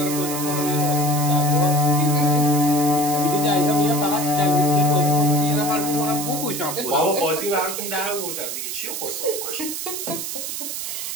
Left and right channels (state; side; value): noise; right; hiss, 5 dB below the sound